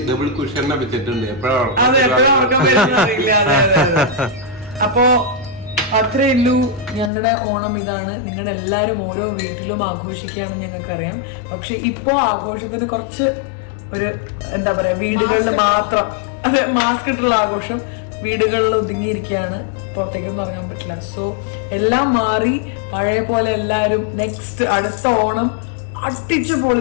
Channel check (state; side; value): drops out; right; at 7.1 s